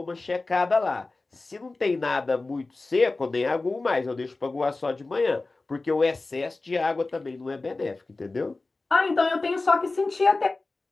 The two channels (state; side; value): quieter; right; 3.4 dB